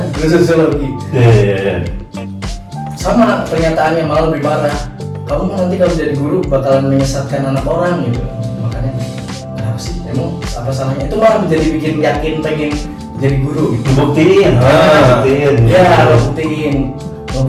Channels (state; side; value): identical; both; correlation 1.00